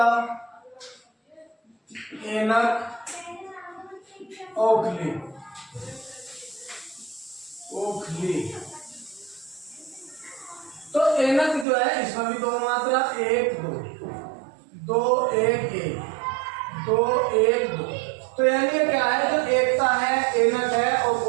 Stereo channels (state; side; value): drops out; left; at 11.7 s